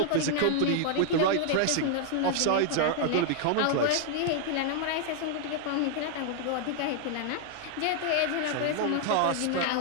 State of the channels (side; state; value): both; different; correlation 0.00